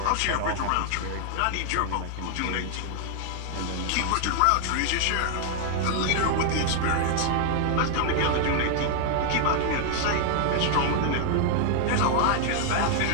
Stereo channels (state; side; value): different; both; correlation 0.00